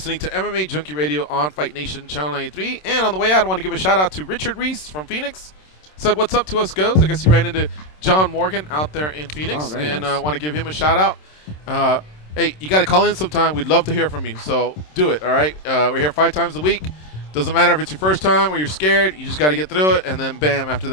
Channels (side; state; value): right; late; 27 ms